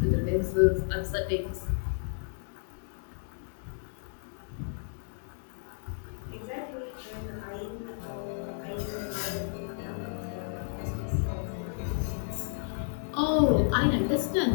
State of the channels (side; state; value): right; silent; digital silence